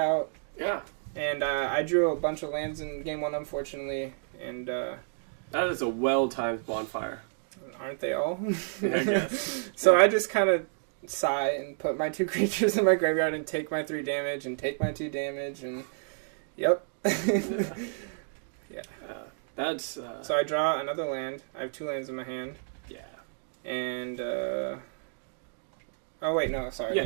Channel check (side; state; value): left; silent; digital silence